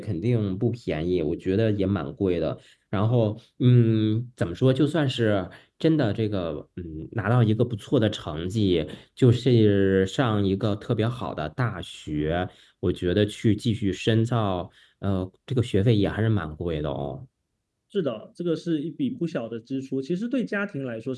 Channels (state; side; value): identical; both; correlation 1.00